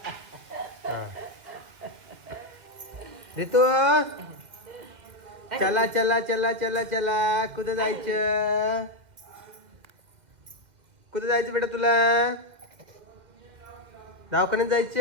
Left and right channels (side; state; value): left; late; 2.1 ms